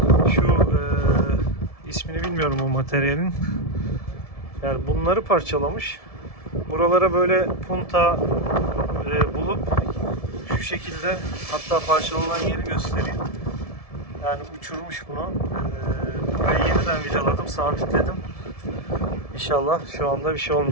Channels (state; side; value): late; right; 1.7 ms